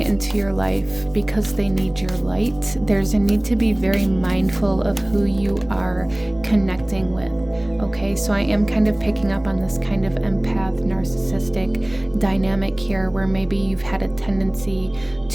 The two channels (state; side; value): noise; right; hum, 22 dB below the sound